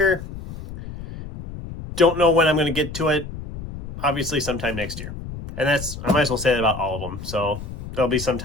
Don't know when I'm going to get to it. Obviously, sometime next year. And that's, I might as well say that about all of them. So there'll be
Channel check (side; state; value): left; noise; rumble, 11 dB below the sound